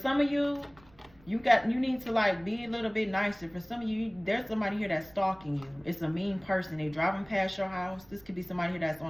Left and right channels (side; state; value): right; noise; rumble, 27 dB below the sound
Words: of you, you need to like be a little bit nicer. For some of you, there's somebody here that's stalking you. It's a mean person. They're driving past your house. This could be somebody here that's